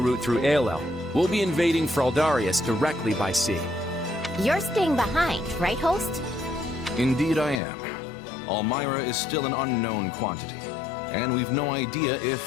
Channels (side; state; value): right; drops out; at 7.6 s